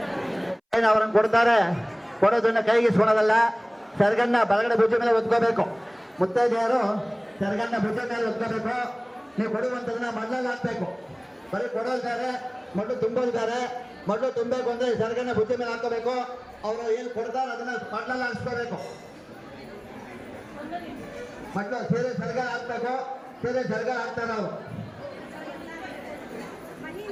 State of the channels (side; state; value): both; identical; correlation 1.00